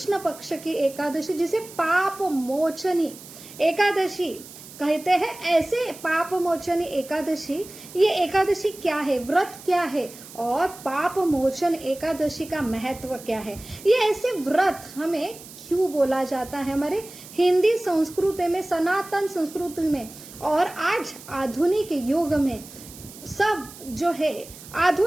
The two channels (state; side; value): noise; right; hiss, 17 dB below the sound